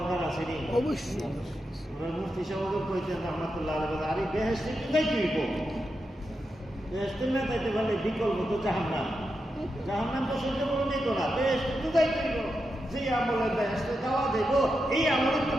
আছে নি? অবশ্যই। মুফতি সাহেব কইতেন রাহমাতুল্লাহ আলাইহি, আরে বেহেশতে যাইতে হইব, বেহেশতে না যাইতে পারলে বিকল্প তো জাহান্নাম। জাহান্নাম তো সহ্য করে নিত না, বেহেশতে তো যাইতে হইব। যে আমলে বেহেশতে যাওয়া যাইব, এই আমলে তো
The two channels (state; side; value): normal; both; correlation 0.87